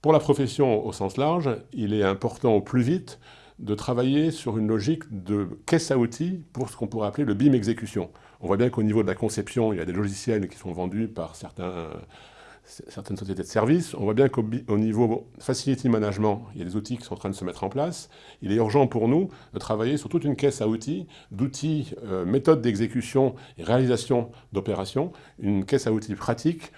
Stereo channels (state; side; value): identical; both; correlation 1.00